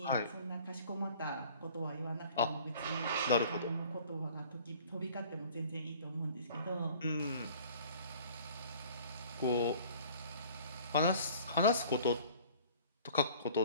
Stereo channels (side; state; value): both; inverted; correlation -0.50